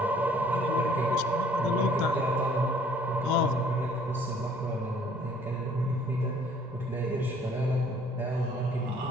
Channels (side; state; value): right; noise; rumble, 29 dB below the sound